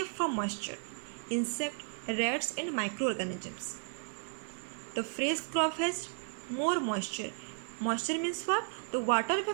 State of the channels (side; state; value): left; silent; 55 dB below the other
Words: from moisture, insect, rats and microorganisms. The fresh crop has more moisture. Moisture means what? The water